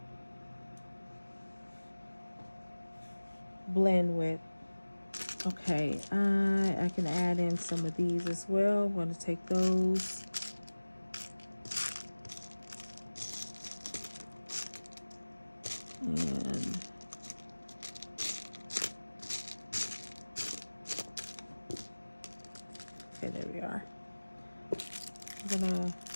blend with. Okay, I can add in some of these as well. I'm going to take those. And okay, there we are. I'm gonna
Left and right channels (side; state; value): both; inverted; correlation -1.00